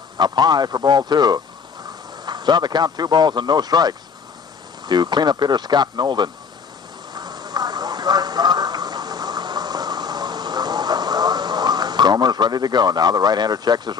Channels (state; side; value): quieter; right; 6.0 dB